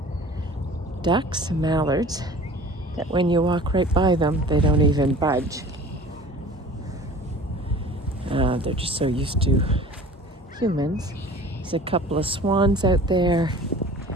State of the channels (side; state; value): both; normal; correlation 0.43